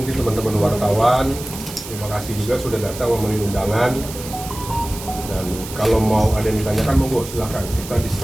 teman-teman wartawan, terima kasih juga sudah datang memenuhi undangan. Dan kalau mau ada yang ditanyakan, monggo silakan. Kita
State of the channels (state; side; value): noise; right; hiss, 12 dB below the sound